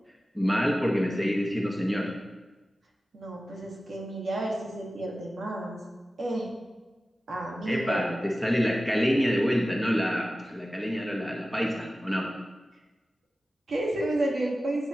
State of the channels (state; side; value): normal; both; correlation 0.95